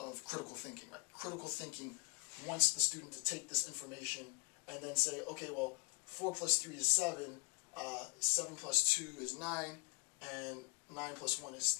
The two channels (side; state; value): right; quieter; 35.7 dB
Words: critical thinking, right? Critical thinking wants the student to take this information and then say, okay, well, 4 plus 3 is 7, 7 plus 2 is 9, and 9 plus 1 is